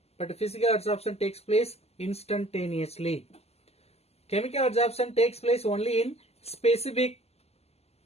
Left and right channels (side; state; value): right; late; 0.30 ms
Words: but physical absorption takes place instantaneously. Chemical absorption takes place only in specific